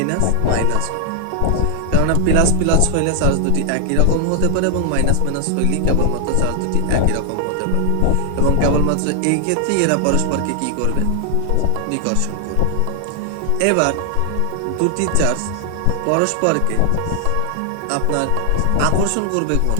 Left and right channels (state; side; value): different; both; correlation 0.00